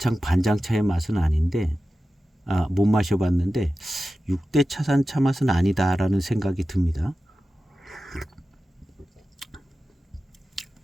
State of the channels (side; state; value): both; normal; correlation 0.94